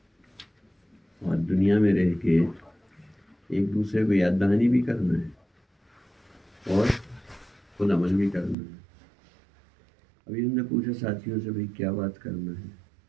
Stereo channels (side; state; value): left; drops out; at 8.6 s